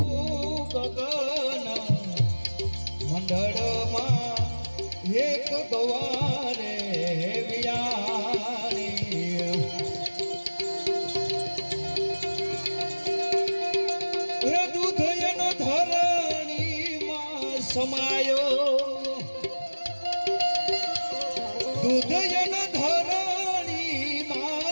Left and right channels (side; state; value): both; inverted; correlation -1.00